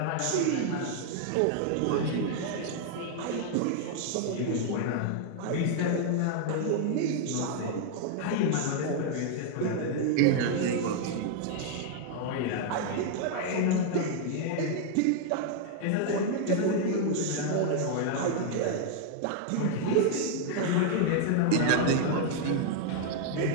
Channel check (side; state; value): both; different; correlation -0.01